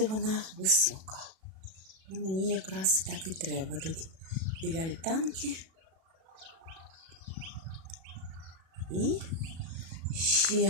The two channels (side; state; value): left; late; 37 ms